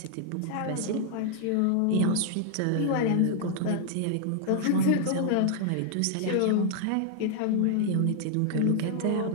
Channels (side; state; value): both; different; correlation 0.00